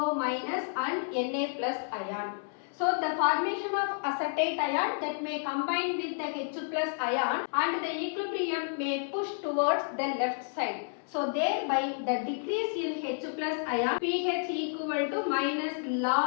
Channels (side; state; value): right; silent; 57 dB below the other